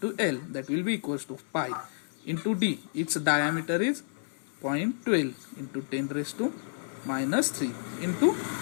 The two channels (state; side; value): silent; right; 57 dB below the other